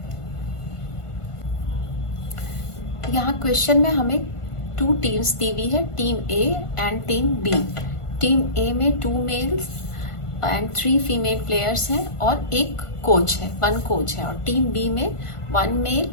यहाँ क्वेश्चन में हमें 2 टीम्स दी हुई है, team A and team B. Team A में 2 मेल्स एंड 3 फीमेल प्लेयर्स हैं और एक कोच है, 1 कोच है। और टीम बी में 1 मेल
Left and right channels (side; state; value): right; late; 1.5 ms